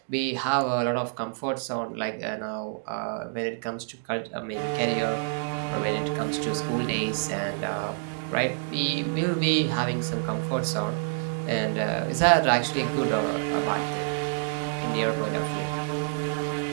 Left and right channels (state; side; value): silent; left; digital silence